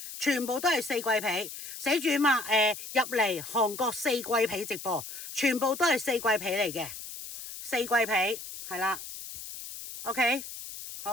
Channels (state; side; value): noise; left; hiss, 11 dB below the sound